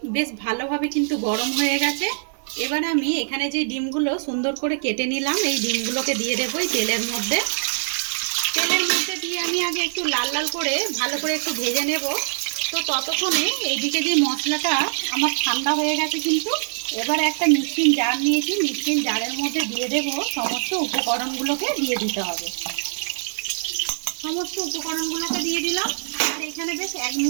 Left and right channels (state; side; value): silent; left; digital silence